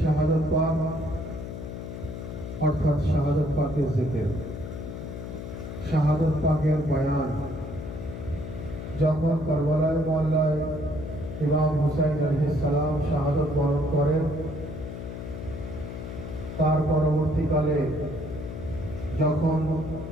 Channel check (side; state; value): left; noise; hum, 8 dB below the sound